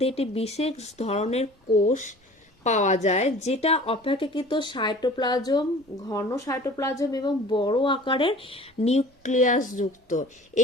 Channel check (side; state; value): both; normal; correlation 0.45